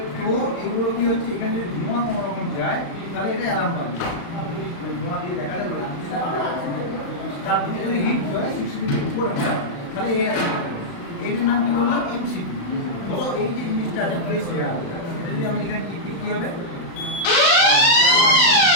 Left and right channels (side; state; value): right; late; 35 ms